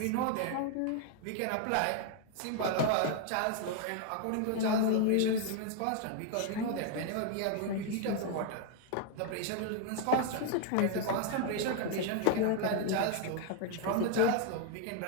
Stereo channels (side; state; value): both; different; correlation 0.00